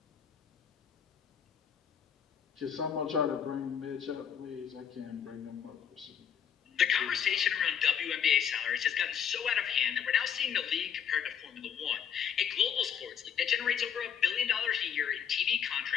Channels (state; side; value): quieter; right; 8.2 dB